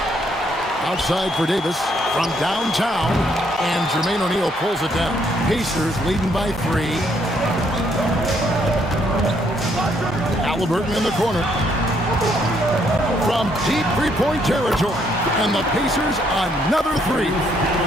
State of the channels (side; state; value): both; normal; correlation 0.70